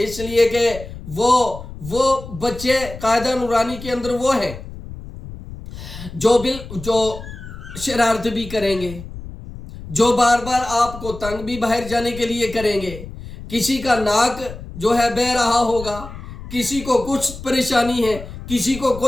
لیے کہ وہ بچے قاعدہ نورانی کے اندر وہ ہیں جو شرارت بھی کریں گے، جو بار بار آپ کو تنگ بھی باہر جانے کے لیے کریں گے، کسی کا ناک جو ہے بہ رہا ہوگا، کسی کو کچھ پریشانی ہے، کسی کو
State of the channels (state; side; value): noise; left; rumble, 13 dB below the sound